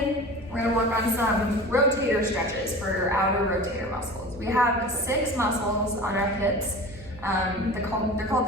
We're gonna work on some rotator stretches for your outer rotator muscles. We have 6 muscles on our hips. They're called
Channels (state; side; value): normal; both; correlation 0.36